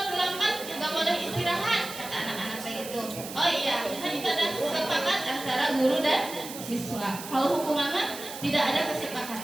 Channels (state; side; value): noise; right; hiss, 11 dB below the sound